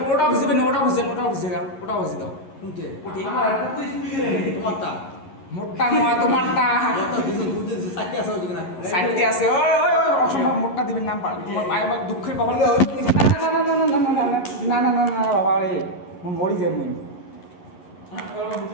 ওটা বুঝবে না ওটা বুঝে দাও ওটা বুঝে দাও কোনতে ওটি আমার একটা তো স্পিকার নেই তোমারটা মোটটা নয় তোমারটা কত দিছো দুধে দিছো চারটে আছে ওদিকে না সাইডে আছে ওই ওই ওই অসম্ভব মোটটা দিবেন না তোমার ভাই আমার দুঃখের খবর না না না না না বাবা রে মরি যাই মুই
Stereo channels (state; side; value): late; right; 11 ms